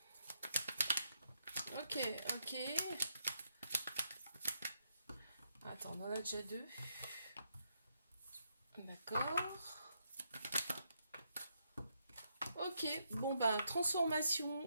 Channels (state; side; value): inverted; both; correlation -0.78